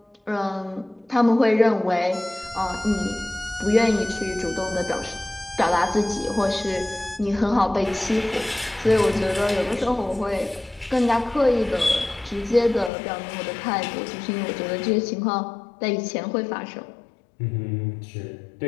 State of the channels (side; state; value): right; drops out; at 12.9 s